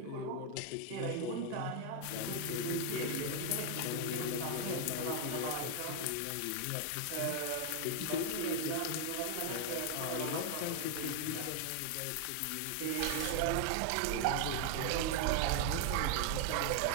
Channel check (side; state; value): both; different; correlation 0.00